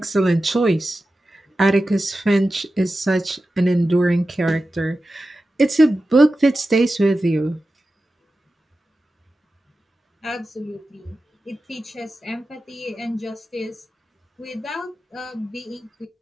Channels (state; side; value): normal; both; correlation 0.93